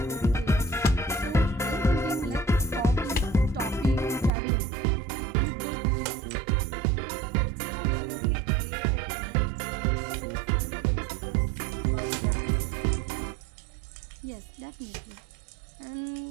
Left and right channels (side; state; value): left; drops out; at 4.3 s